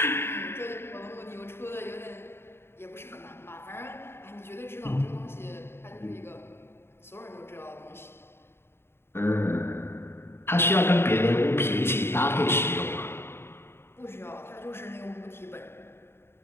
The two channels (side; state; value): right; late; 0.11 ms